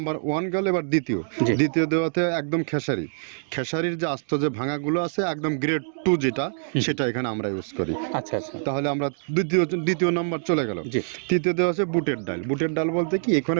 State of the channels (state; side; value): silent; left; digital silence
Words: 1 গেল, এবার দ্বিতীয় দেওয়াতে একদম খেসারির যে আস্ত যে ভাঙাগুলো আছে একদম গ্রেড 2 যেটা, সেটা এখানে আমরা ইউজ করি। আচ্ছা আচ্ছা, তাহলে আমরা দ্বিতীয় নাম্বার চলে গেল। তৃতীয় দেওয়া আছে বুটের ডাল বলতে কি, এখানে